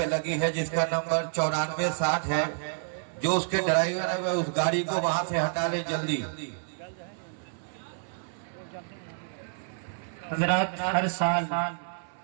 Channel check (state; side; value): silent; left; 57 dB below the other